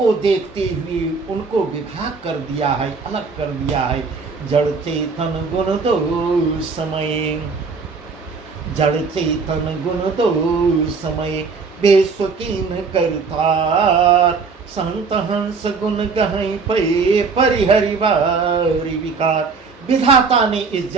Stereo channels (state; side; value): quieter; left; 4.8 dB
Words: देखते हुए उनको विभाग कर दिया है, अलग कर दिया है। जड़ चेतन गुण दो समय, जड़ चेतन गुण दो समय, बेस्वकीन करतार। संत हंस गुण गहई पे, परिहरि वारि विकार। विधाता ने इस